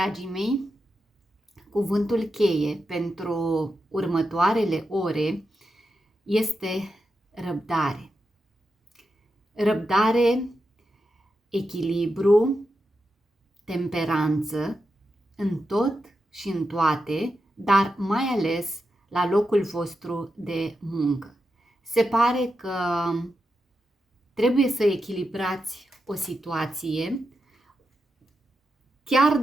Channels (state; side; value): normal; both; correlation 0.88